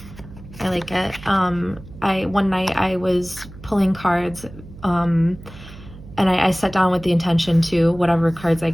like it. One night I was pulling cards, and I sat down with the intention to, whatever cards I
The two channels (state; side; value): noise; right; hum, 17 dB below the sound